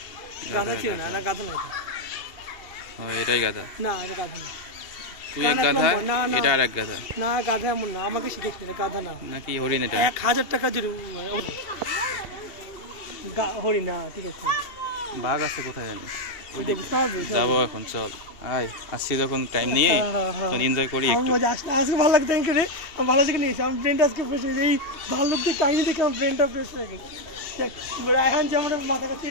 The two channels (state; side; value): late; right; 2.7 ms